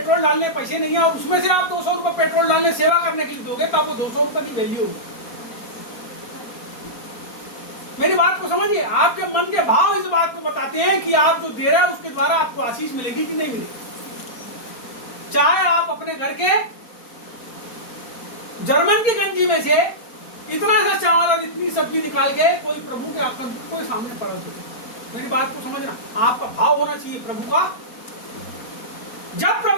डालने पैसे नहीं है और उसमें से आप 200 रुपए पेट्रोल डालने सेवा करने के लिए दोगे, तो आपको 200 रुपए की वैल्यू होगी। मेरी बात को समझिए, आपके मन के भाव इस बात को बताते हैं कि आप जो दे रहे हैं उसके द्वारा आपको आशीष मिलेगी कि नहीं मिलेगी। चाहे आप अपने घर के जर्मन की गंजी में से इतना सा चावल और इतनी सब्जी निकाल के कोई प्रभु के आपको सामने पड़ा दो। मेरी बात को समझना, आपका भाव होना चाहिए प्रभु का। जब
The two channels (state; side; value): late; right; 4.3 ms